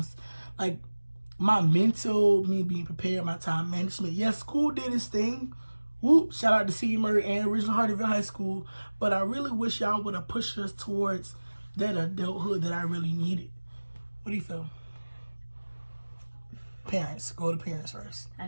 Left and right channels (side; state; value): both; inverted; correlation -1.00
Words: like my mental, me being prepared, my time management. Yes, school did its thing. Whoop, shout out to C. Murray and Original Hardyville High School. But I really wish y'all would have pushed us towards that adulthood that I really needed. What do you feel? Parents. Go to parents first.